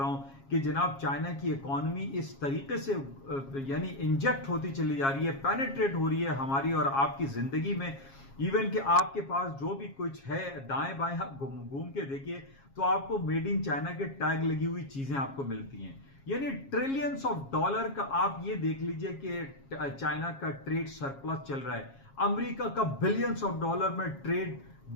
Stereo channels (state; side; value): late; right; 7.3 ms